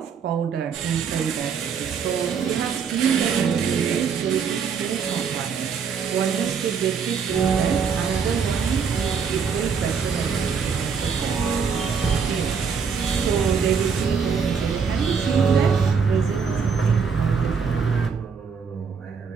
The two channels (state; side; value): quieter; left; 6.1 dB